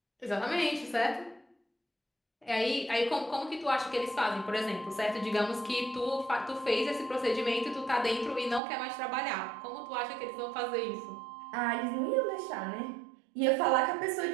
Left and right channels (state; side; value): drops out; left; at 8.6 s